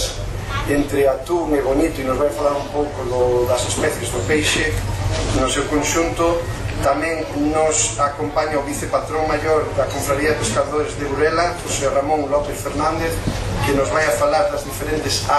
entre atún e bonito, e nos vai a falar un pouco das especies do peixe no seu conxunto. Tamén nos acompaña o vicepatrón maior da Confraría de Pescadores de Burela, José Ramón López Fernández, que nos vai a falar das diferentes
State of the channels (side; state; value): both; identical; correlation 1.00